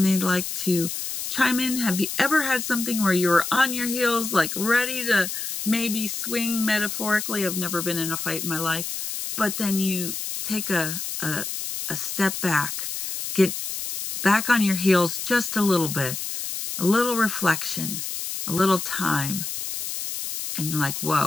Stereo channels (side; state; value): left; noise; hiss, 5 dB below the sound